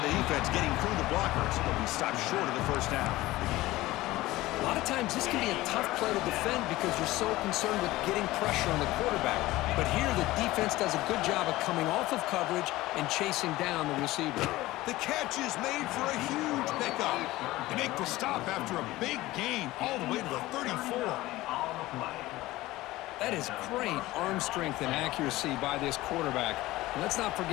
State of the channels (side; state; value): right; quieter; 17.9 dB